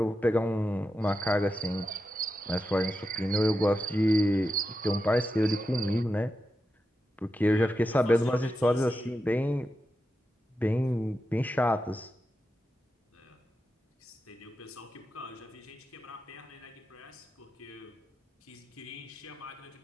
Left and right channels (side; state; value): both; normal; correlation 0.89